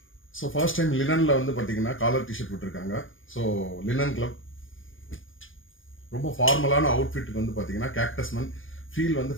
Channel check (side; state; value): right; late; 0.58 ms